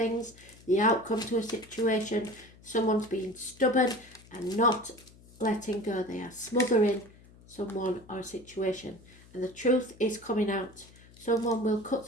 the outcome to a situation. Someone's being stubborn and not letting go. They are smothering someone or a situation, and the truth is coming out. Someone will cut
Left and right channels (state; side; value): noise; left; hum, 24 dB below the sound